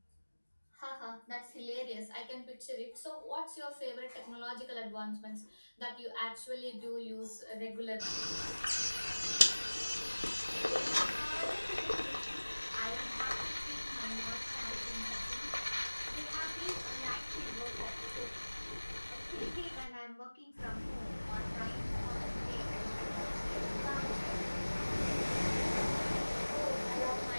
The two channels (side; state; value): both; inverted; correlation -1.00